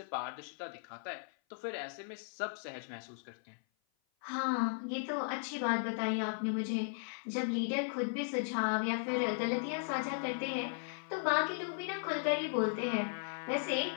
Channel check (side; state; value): right; silent; 53 dB below the other